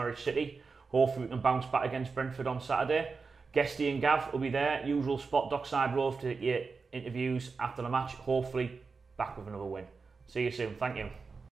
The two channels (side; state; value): left; quieter; 4.7 dB